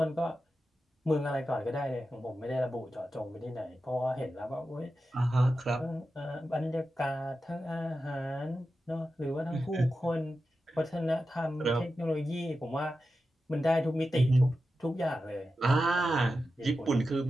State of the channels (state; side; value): normal; both; correlation 0.91